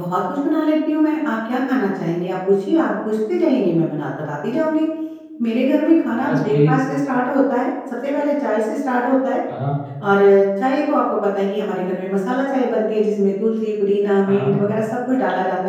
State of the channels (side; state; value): both; identical; correlation 1.00